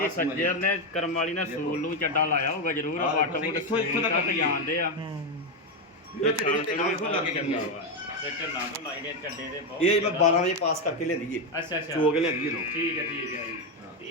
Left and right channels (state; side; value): normal; both; correlation 0.07